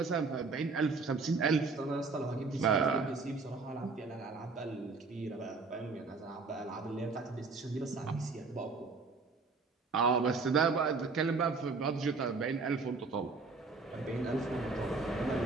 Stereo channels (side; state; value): left; quieter; 4.1 dB